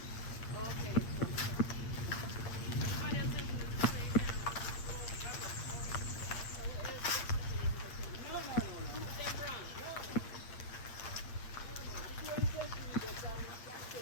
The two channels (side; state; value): right; late; 8.7 ms